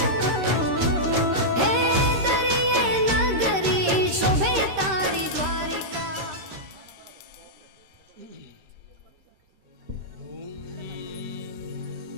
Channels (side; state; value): left; late; 13 ms